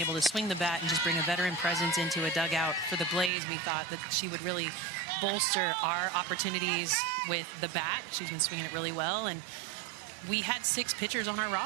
to swing the bat and just bring a veteran presence into a dugout for the Blaze. We thought that she would really bolster our opportunities with the bat. She's been swinging it really well, and we had 6 pitchers on our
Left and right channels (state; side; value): drops out; left; at 3.3 s